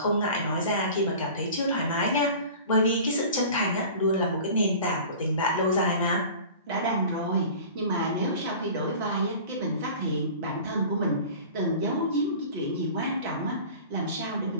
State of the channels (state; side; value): inverted; both; correlation -0.40